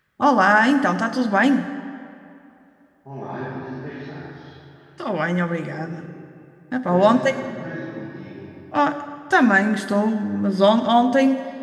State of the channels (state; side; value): identical; both; correlation 1.00